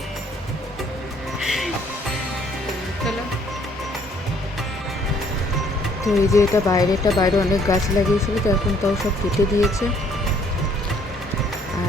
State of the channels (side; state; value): both; normal; correlation 0.63